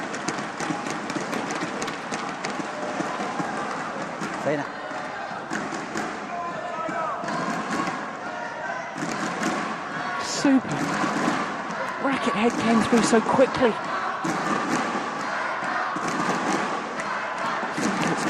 Super. Racket head came through so quickly.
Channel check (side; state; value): both; identical; correlation 1.00